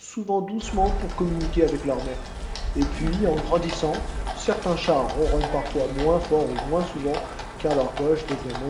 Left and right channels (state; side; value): identical; both; correlation 1.00